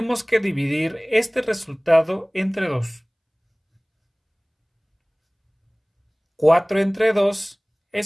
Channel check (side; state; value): both; identical; correlation 1.00